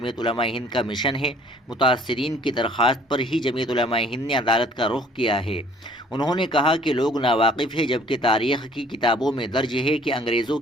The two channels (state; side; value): normal; both; correlation 0.56